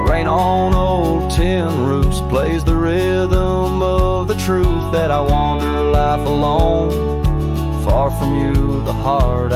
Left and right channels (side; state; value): both; identical; correlation 1.00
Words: Rain on old tin roofs plays the rhythm of the truth that I wander life alone, far from you, the heart